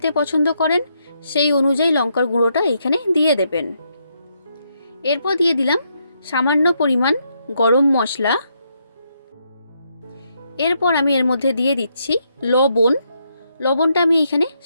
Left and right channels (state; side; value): inverted; both; correlation -0.77